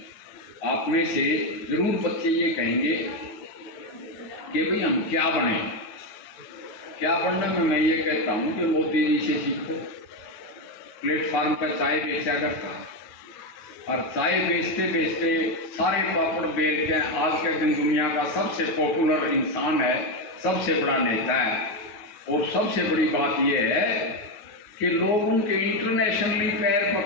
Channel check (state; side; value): late; right; 9.6 ms